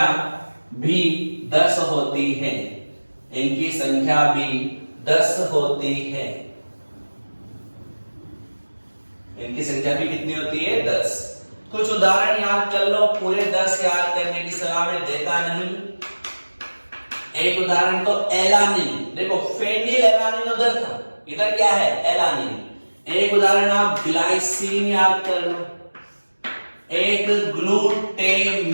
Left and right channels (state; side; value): inverted; both; correlation -1.00